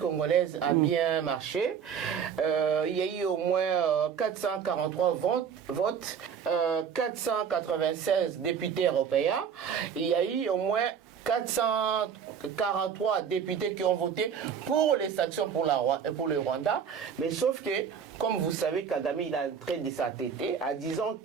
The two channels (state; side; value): quieter; left; 7.3 dB